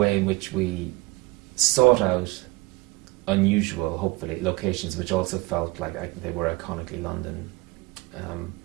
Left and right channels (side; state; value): left; quieter; 22.7 dB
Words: in which we sought out unusual, hopefully, locations which also felt like they were iconically London,